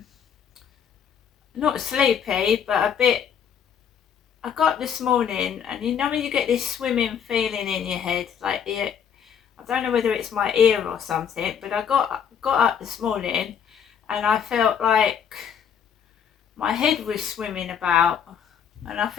not sleepy, but a bit. I got this morning, and you know when you get this swimming feeling in your head, like I don't know whether it's my ear or something, but I got up this morning, and I felt like my head was swimming about and I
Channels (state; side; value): quieter; right; 7.9 dB